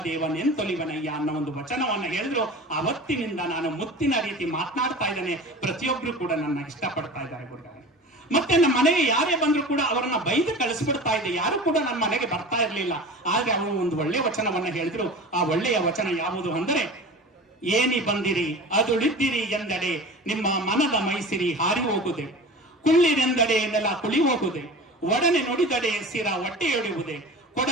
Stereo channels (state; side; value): normal; both; correlation 0.36